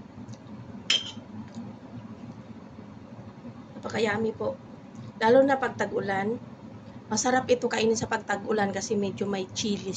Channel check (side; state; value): both; identical; correlation 1.00